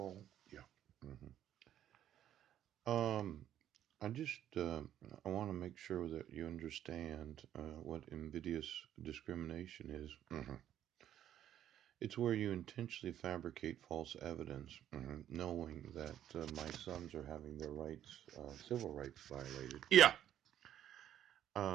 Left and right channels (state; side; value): quieter; left; 11.1 dB